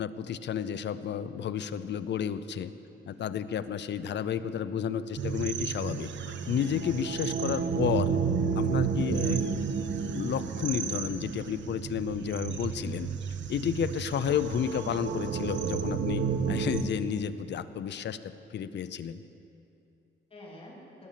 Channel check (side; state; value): both; normal; correlation 0.35